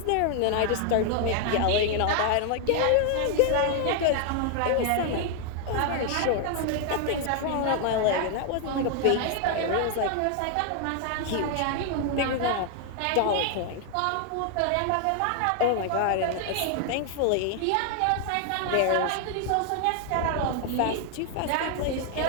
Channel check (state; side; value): different; both; correlation 0.00